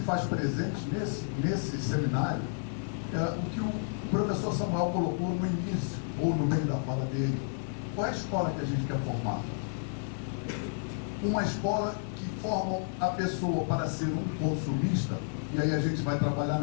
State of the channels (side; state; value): right; silent; 57 dB below the other